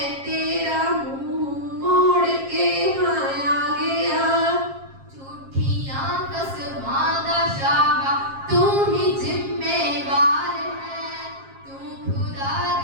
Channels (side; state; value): left; late; 7.4 ms